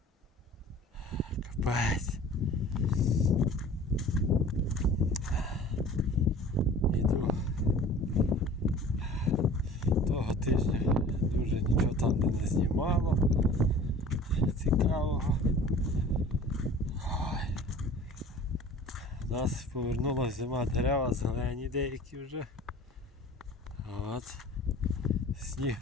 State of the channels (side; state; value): both; normal; correlation 0.44